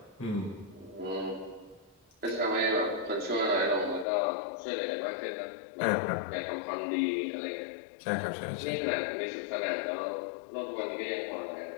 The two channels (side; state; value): right; drops out; at 4.0 s